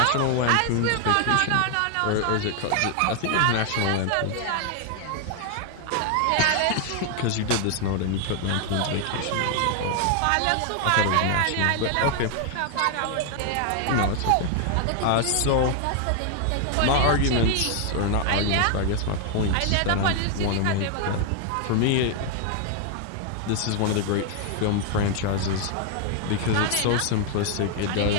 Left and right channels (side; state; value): both; different; correlation 0.00